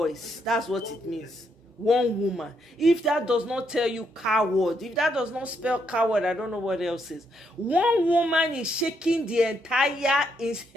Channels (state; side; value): normal; both; correlation 0.76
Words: That's what it means. One woman. If that does not tell you coward, if that does not spell coward, I don't know what else is. One woman is shaking the entire